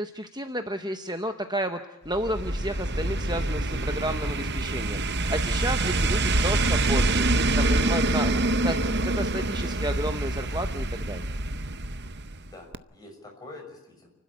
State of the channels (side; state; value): both; normal; correlation 0.60